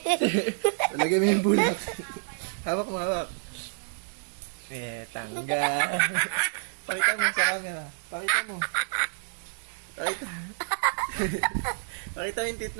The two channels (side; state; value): left; silent; digital silence